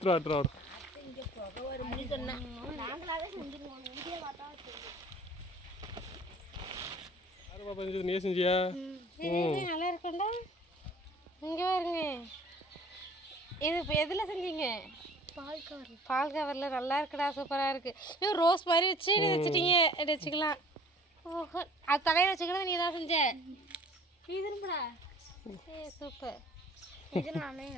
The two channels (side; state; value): both; normal; correlation 0.50